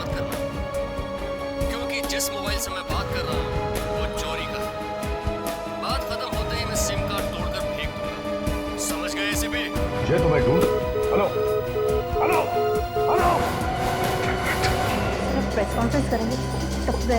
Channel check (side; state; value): both; identical; correlation 1.00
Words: करना, क्योंकि जिस मोबाइल से मैं बात कर रहा हूँ वो चोरी का है। बात खत्म होते ही मैं सिम कार्ड तोड़कर फेंक दूंगा। समझ गए एसीपी? मुझे तो मैं ढूंढ। Hello hello hello. सर, अब प्रेस कॉन्फ्रेंस करेंगे तब